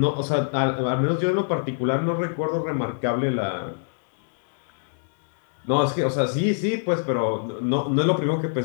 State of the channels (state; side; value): silent; right; digital silence